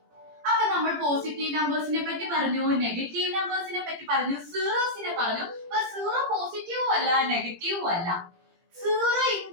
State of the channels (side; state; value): left; late; 17 ms